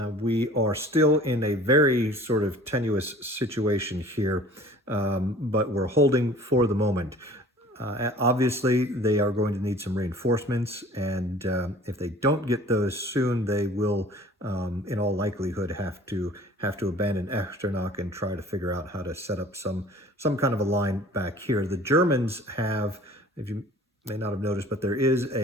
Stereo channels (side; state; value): both; normal; correlation 0.48